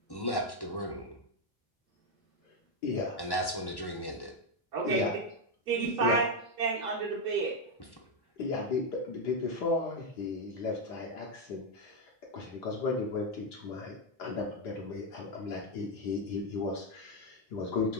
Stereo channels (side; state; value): right; late; 1.1 ms